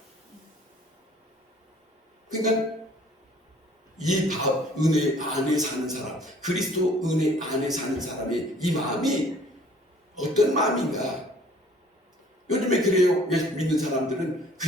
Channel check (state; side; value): normal; both; correlation 0.55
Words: 그러니까 이 은혜 안에 사는 사람, 그리스도 은혜 안에 사는 사람의 이 마음이 어떤 마음인가? 요즘에 그래요. 믿는 사람들은